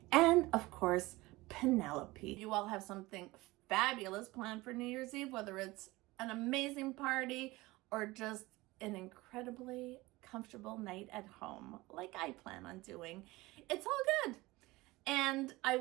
and of course, Penelope. You all have something fabulous planned for New Year's Eve, whether it's an amazing party or just an incredibly comfortable night at home, like I plan on doing. It's all good. And I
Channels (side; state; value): left; quieter; 20.5 dB